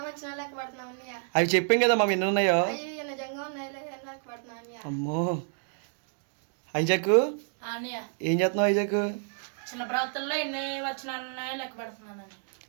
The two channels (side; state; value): left; silent; 58 dB below the other